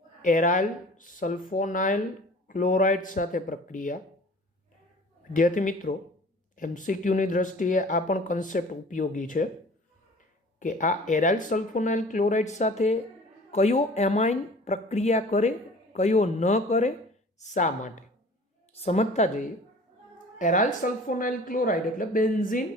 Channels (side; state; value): both; normal; correlation 0.46